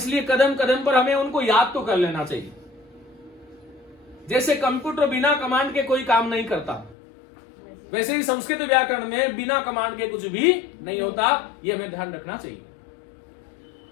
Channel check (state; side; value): drops out; right; at 7.0 s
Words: कदम कदम पर हमें उनको याद तो कर लेना चाहिए। जैसे कंप्यूटर बिना कमांड के कोई काम नहीं करता, वैसे ही संस्कृत व्याकरण में बिना कमांड के कुछ भी नहीं होता। यह हमें ध्यान रखना चाहिए।